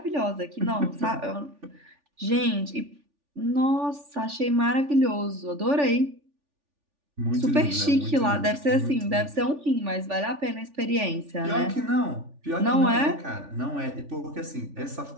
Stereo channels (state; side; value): late; left; 3.4 ms